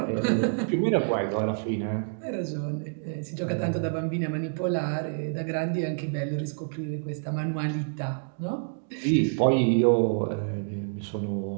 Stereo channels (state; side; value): silent; left; digital silence